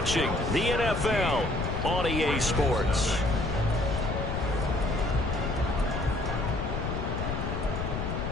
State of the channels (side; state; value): left; noise; rumble, 2 dB below the sound